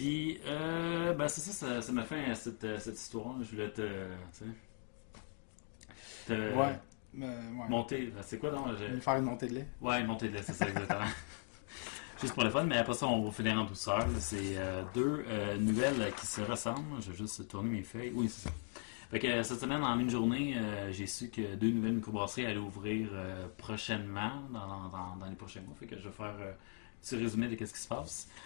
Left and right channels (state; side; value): silent; right; 51 dB below the other